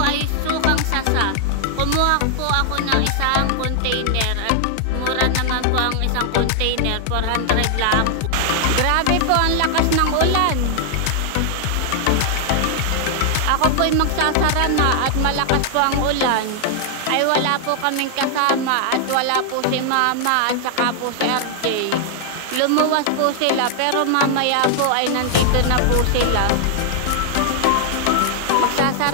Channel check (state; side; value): different; both; correlation 0.00